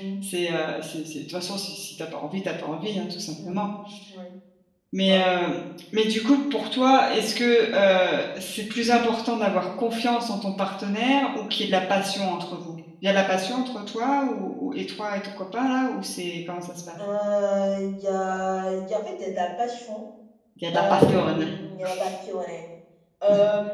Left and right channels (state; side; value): identical; both; correlation 1.00